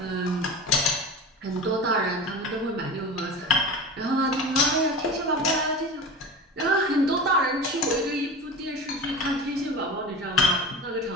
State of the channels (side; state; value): both; normal; correlation 0.31